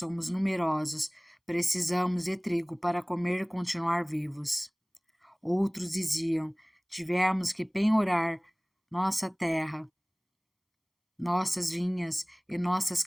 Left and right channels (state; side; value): identical; both; correlation 1.00